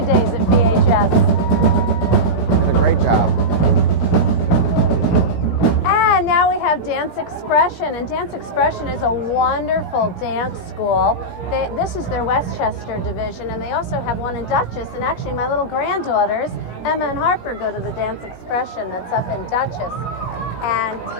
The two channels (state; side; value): late; right; 17 ms